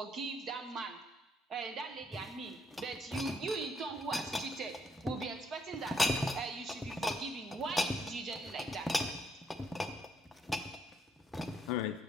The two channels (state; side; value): normal; both; correlation 0.72